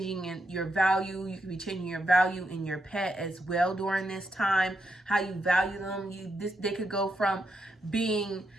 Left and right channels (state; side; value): normal; both; correlation 0.82